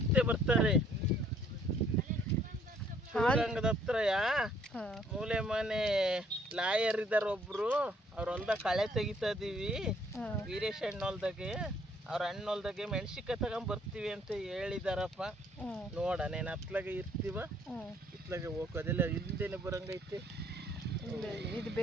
ಬರ್ತಾರೆ. ಶಿವಗಂಗದ ಹತ್ರ ಮೂಲೆ ಮನೆ ಲಾಯರ್ ಇದಾರ ಒಬ್ರು, ಅವ್ರ ಹೊಲ್ದಾಗ ಕಳೆ ತೆಗಿತಾ ಇದೀವಿ. ವೀರೇಶ್ ಅಣ್ಣ ಹೊಲ್ದಾಗೆ, ಅವ್ರ ಅಣ್ಣ ಹೊಲ್ದಾಗೆ ಮೆಣಸಿನ್ಕಾಯಿ ತಗೊಂಡ್ ಬರ್ತೀವಿ ಅಂತ ಹೇಳಿದಾರಪ್ಪ. ನೋಡನೇನು ಹತ್ಲಾಗೆ ಇರ್ತೀವ, ಇತ್ಲಾಗೆ ಹೋಗೋದಿಲ್ಲ. ಹಿಂದೆನೆ ಬರಂಗೈತಿ. ಇದು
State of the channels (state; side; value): normal; both; correlation 0.63